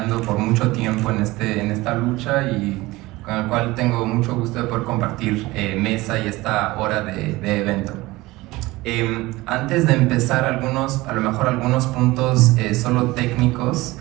por mucho tiempo en esta lucha y con el cual tengo mucho gusto de poder compartir mesa y esta hora de evento. Antes de empezar, a lo mejor algunos puntos solo técnicos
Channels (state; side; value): quieter; left; 20.0 dB